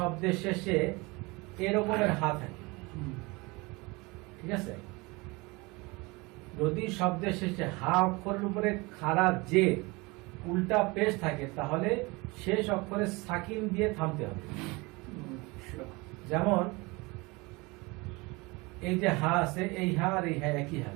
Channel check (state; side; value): quieter; left; 25.1 dB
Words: শেষে এরকমের হা থাকে, ঠিক আছে, যদি শব্দের শেষে হা অক্ষরের উপরে খাড়া যে উল্টা পেশ থাকে তাহলে শেষ অক্ষরে সাকিন দিয়ে থামতে হবে। যেমন এই যে হা আছে, এই হা আর এই হা একই হা,